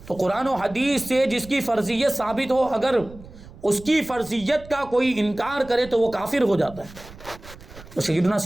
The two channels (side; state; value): right; noise; rumble, 18 dB below the sound